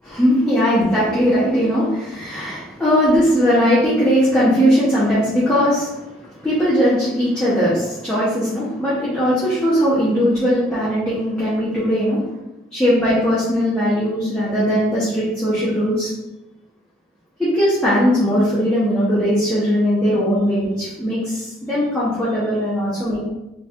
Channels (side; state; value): both; normal; correlation 0.64